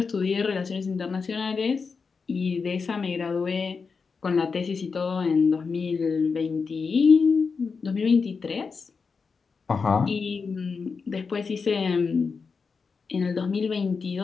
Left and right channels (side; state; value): right; quieter; 5.1 dB